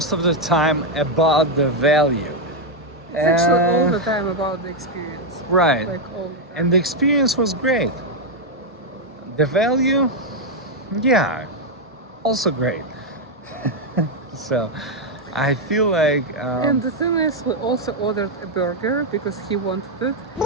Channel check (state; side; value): normal; both; correlation 0.01